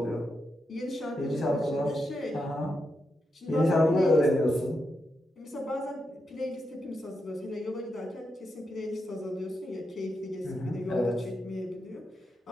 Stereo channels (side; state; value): both; normal; correlation 0.85